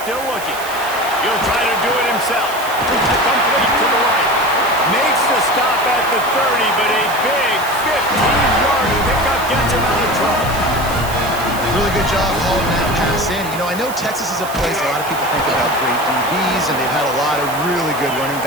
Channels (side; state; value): right; noise; hiss, 13 dB below the sound